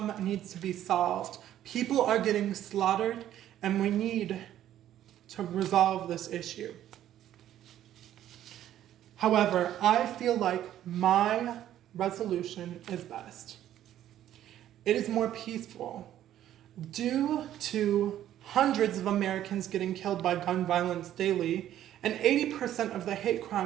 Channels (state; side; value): quieter; left; 11.9 dB